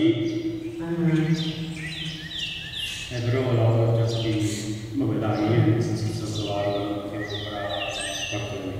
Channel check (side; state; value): both; identical; correlation 1.00